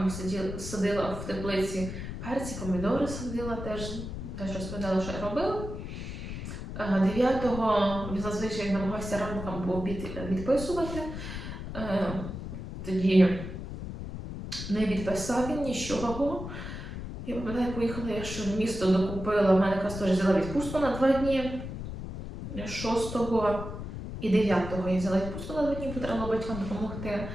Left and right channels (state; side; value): noise; left; rumble, 8 dB below the sound